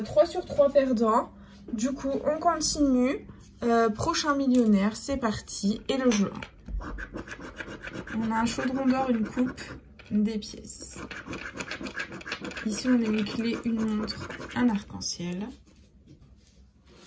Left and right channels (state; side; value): identical; both; correlation 1.00